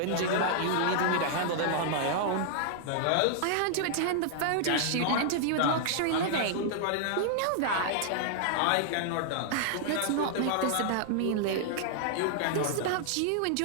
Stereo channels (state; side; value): different; both; correlation -0.01